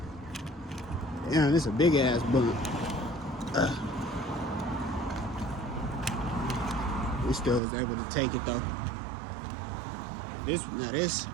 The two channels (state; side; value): drops out; left; at 7.6 s